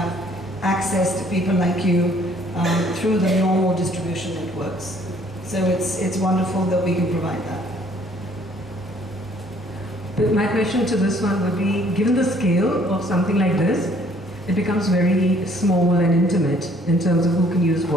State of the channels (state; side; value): normal; both; correlation 0.60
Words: access to people like you through the normal distribution networks. So it's wonderful that we can provide that. But my question to this one would be, given the scale of something like this, it becomes very small and intimate in terms of who can use